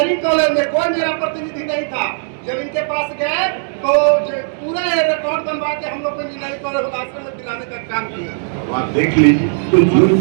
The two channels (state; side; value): silent; left; digital silence